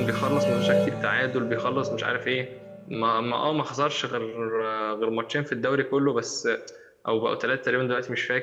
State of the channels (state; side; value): identical; both; correlation 1.00